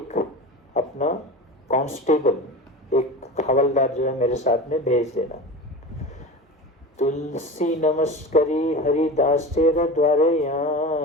अपना कांस्टेबल, एक हवलदार जो है मेरे साथ में भेज देना। तुलसी नमस्करी हरिदास तेरे द्वारे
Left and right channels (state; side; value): normal; both; correlation 0.30